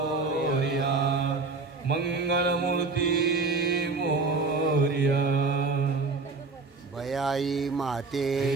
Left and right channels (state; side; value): quieter; left; 4.0 dB